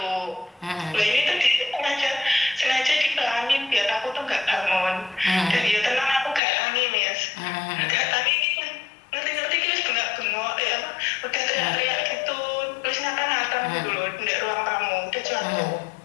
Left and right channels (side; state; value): right; drops out; at 6.4 s